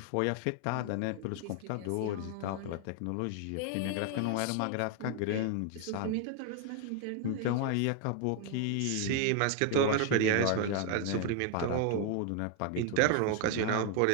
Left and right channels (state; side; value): different; both; correlation 0.00